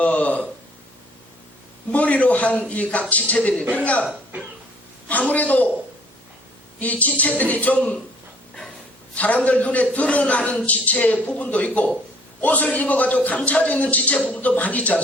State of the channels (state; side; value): normal; both; correlation 0.58